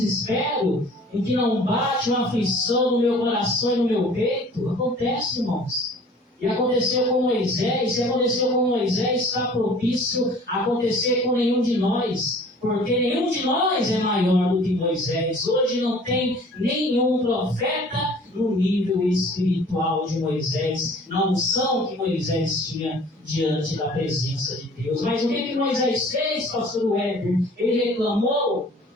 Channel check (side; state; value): both; normal; correlation 0.49